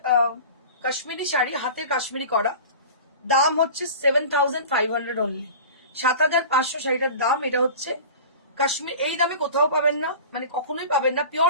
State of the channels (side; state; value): both; inverted; correlation -0.37